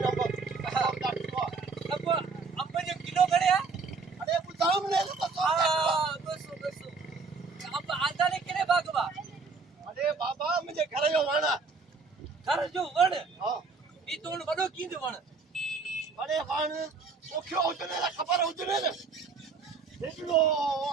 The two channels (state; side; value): quieter; left; 4.6 dB